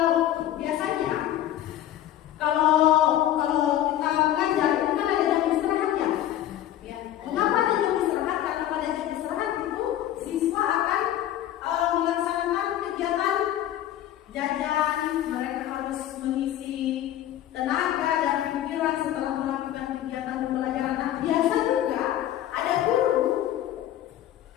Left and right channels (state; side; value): quieter; right; 12.4 dB